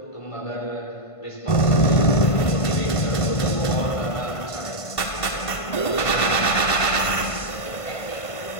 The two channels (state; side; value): late; right; 1.5 ms